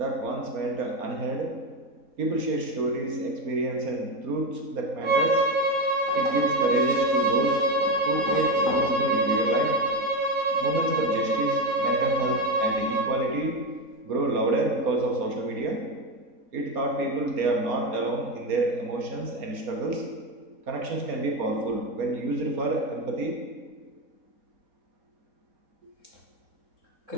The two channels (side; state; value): left; late; 4.3 ms